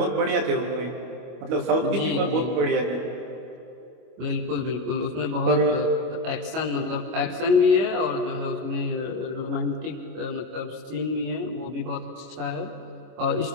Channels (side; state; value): left; late; 25 ms